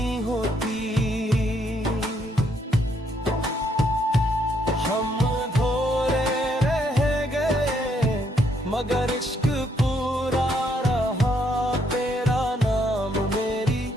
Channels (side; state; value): both; normal; correlation 0.72